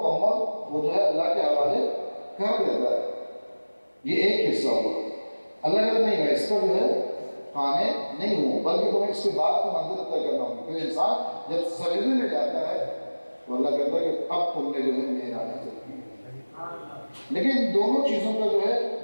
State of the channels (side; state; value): both; inverted; correlation -1.00